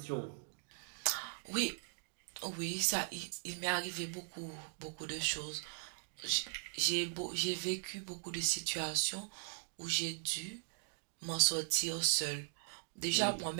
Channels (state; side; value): silent; left; digital silence